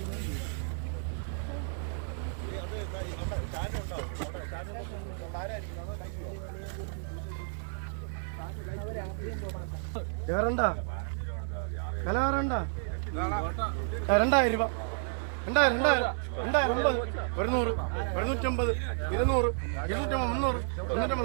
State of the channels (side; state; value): left; silent; digital silence